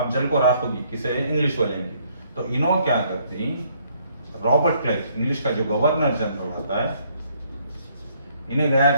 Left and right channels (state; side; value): inverted; both; correlation -0.66